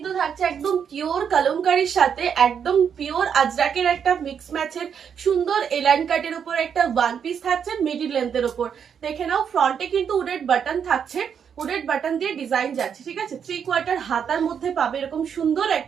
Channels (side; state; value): left; quieter; 7.6 dB